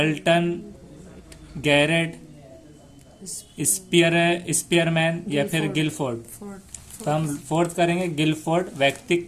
गैरेट, स्पीयरमैन या फिर गिलफोर्ड। तो हम फोर्थ करेंगे गिलफोर्ड।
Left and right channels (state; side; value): identical; both; correlation 1.00